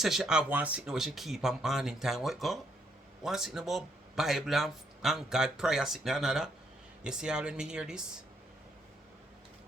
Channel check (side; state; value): both; normal; correlation 0.72